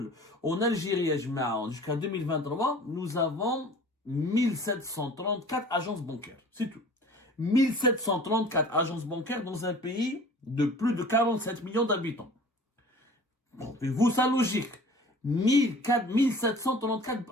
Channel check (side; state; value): both; normal; correlation 0.45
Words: En Algérie, jusqu'à 2023, nous avons 1734 agences bancaires. C'est tout. 1734 agences bancaires dans un pays de plus de 47 millions d'habitants. Trouvez-vous ça logique? 1734